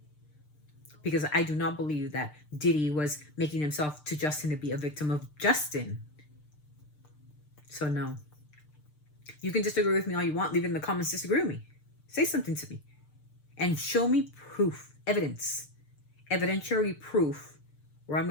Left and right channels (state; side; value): late; right; 6.7 ms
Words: Because I do not believe that Diddy was making himself to Justin to be a victim of Justin. So no. You can disagree with me all you want. Leave it in the comments. Disagree with me. Say something to me. And show me proof, evidence, evidentiary proof where I'm